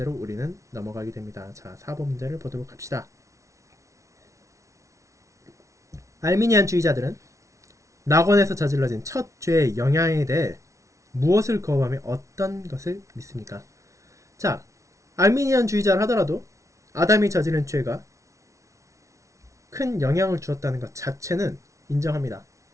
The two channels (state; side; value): late; left; 0.15 ms